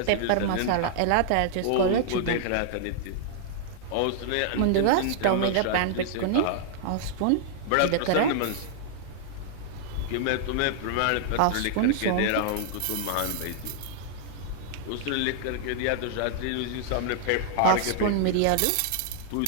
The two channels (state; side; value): different; both; correlation -0.01